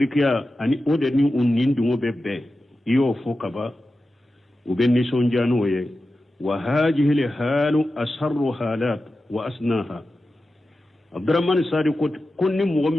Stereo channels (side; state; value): both; normal; correlation 0.93